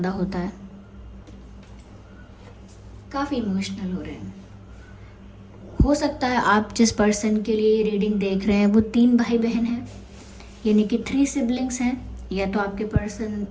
होता है। काफ़ी इमोशनल हो रहे हैं। हो सकता है आप जिस पर्सन के लिए रीडिंग देख रहे हैं वो 3 भाई बहन हैं, यानी कि 3 सिबलिंग्स हैं। या तो आपके पर्सन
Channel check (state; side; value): identical; both; correlation 1.00